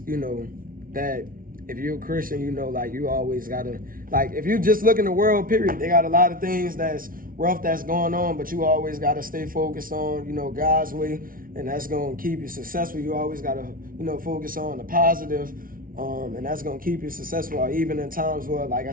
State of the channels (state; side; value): late; left; 0.41 ms